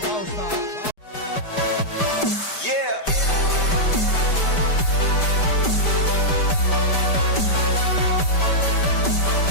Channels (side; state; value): right; late; 5.2 ms